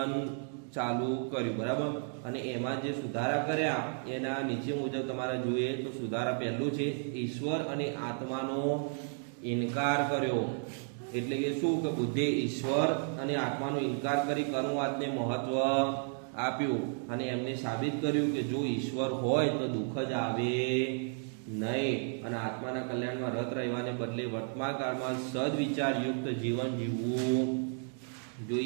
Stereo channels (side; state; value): left; silent; 56 dB below the other